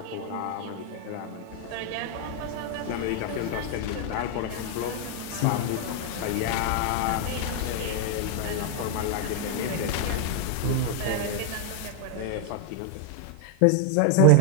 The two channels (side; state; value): both; different; correlation 0.00